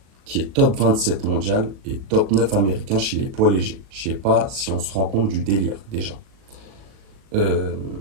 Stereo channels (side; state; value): left; late; 37 ms